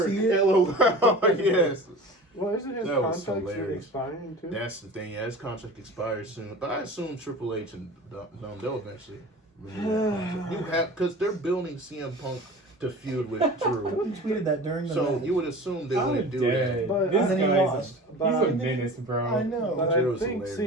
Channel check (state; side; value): normal; both; correlation 0.38